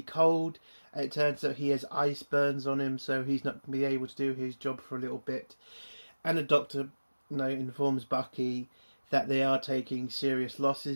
cold. It turns out he has ice burns on him, so he's not going to be able to do his job for a little bit. And the doctor, informs Bucky that they are taking serious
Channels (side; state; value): both; inverted; correlation -1.00